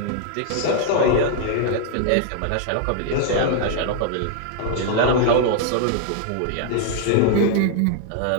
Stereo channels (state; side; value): different; both; correlation -0.01